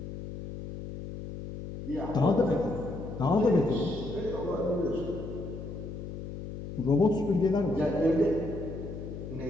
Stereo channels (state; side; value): noise; left; hum, 9 dB below the sound